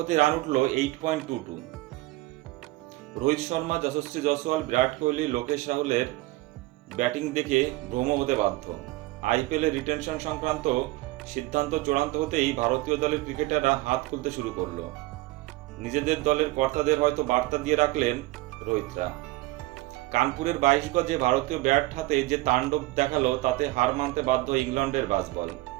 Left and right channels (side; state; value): left; quieter; 19.7 dB